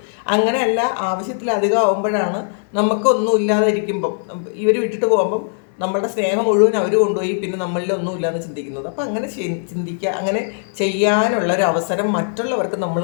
അങ്ങനെയല്ല, ആവശ്യത്തിലധികം ആവുമ്പോഴാണ് നമുക്കൊന്നും ഇല്ലാതെ ഇരിക്കുമ്പം ഇവർ വിട്ടിട്ട് പോകുമ്പം നമ്മളുടെ സ്നേഹം മുഴുവൻ അവർ കൊണ്ടുപോയി പിന്നെ നമ്മളിൽ ഒന്നുമില്ലാന്ന് ചിന്തിക്കുന്നത്. അപ്പം അങ്ങനെ ചിന്തിക്കുക, അങ്ങനെ ചെയ്യാനുള്ളൊരു അവസരം മറ്റുള്ളവർക്ക് നമ്മൾ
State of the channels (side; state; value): right; silent; 60 dB below the other